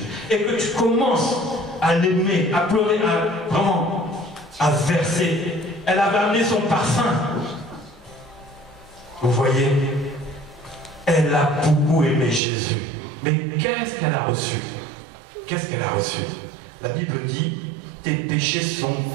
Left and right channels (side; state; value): left; drops out; at 12.4 s